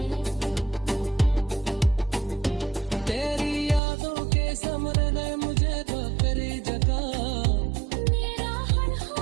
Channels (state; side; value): drops out; left; at 3.8 s